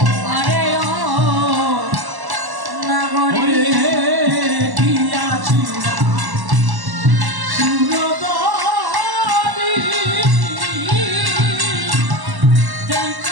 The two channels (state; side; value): late; left; 1.1 ms